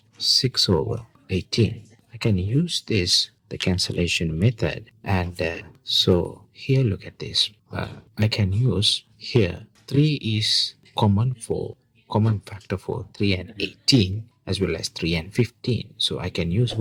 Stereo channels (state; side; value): identical; both; correlation 1.00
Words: 6 over 18. I can use this, the cancellation method, and so here look at this. I can use here 3 is common factor for 3 and 18 as well as 3 and 15. So I can use